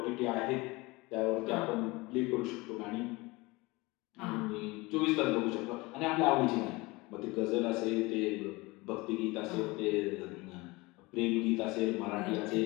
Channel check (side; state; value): right; quieter; 23.2 dB